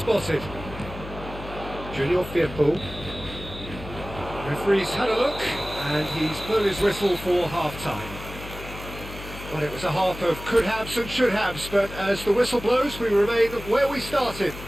Junior Firpo. Referee's had a look, and he's blown his whistle for half-time. Well, it was a half of could-haves and should-haves, but as the whistle blows, we remain where we started.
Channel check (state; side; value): noise; left; hum, 12 dB below the sound